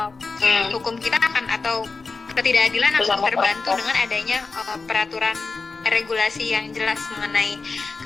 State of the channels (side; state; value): right; quieter; 4.2 dB